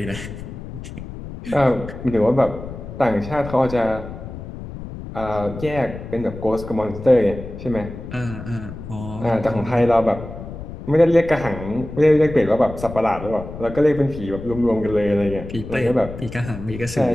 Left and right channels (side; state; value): left; noise; rumble, 11 dB below the sound